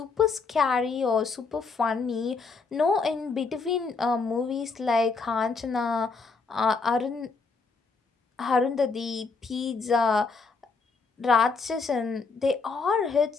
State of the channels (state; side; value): quieter; right; 4.5 dB